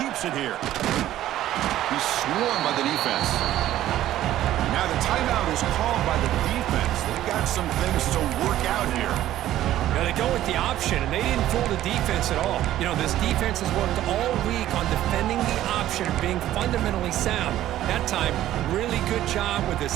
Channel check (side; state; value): left; quieter; 13.4 dB